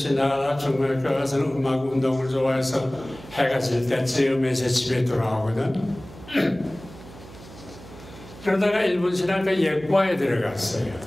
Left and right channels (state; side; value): noise; right; hum, 18 dB below the sound